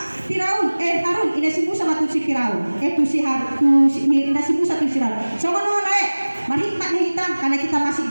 Firaun, Harun, ini si Musa sama si Firaun, si Harun, ini si Musa tu si Harun. Sama nama lain, berhikmat hitam karena kita masih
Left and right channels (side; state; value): both; inverted; correlation -1.00